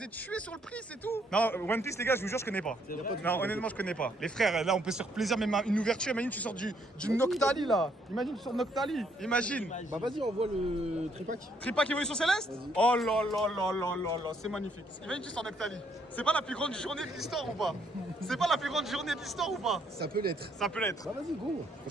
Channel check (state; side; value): normal; both; correlation 0.70